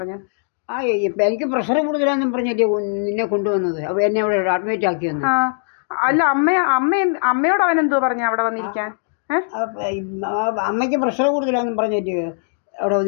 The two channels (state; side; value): silent; right; 66 dB below the other